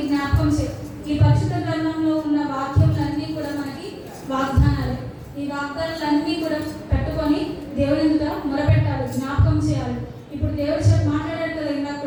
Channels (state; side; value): identical; both; correlation 1.00